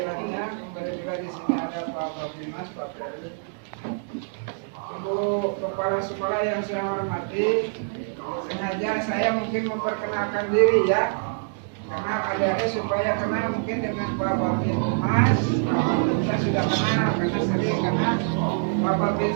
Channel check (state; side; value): silent; left; digital silence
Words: Kemudian juga di sini ada Pak Babimas, Pak Ferdi. Ibu kepala sekolah yang saya hormati, sengaja saya mungkin memperkenalkan diri ya, karena adik-adik supaya kenal mungkin dengan Pak Babimas. Pak Babinsa sudah kenal karena sering, karena Pak